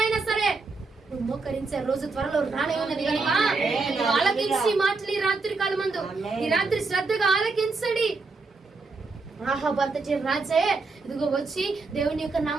సరే నువ్వు మోకరించే రోజు త్వరలో రానే ఉన్నది కనుక ఆలకించి మాటలు ఈ రాత్రి కాలమందు, ఈ రాత్రి శ్రద్ధగా ఆలకించండి. ఆహాబు అంతటి రాజే ఇదిగో వచ్చి దేవుని యొక్క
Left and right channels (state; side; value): quieter; left; 4.0 dB